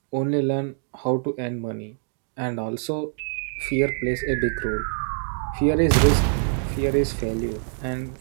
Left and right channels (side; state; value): left; silent; digital silence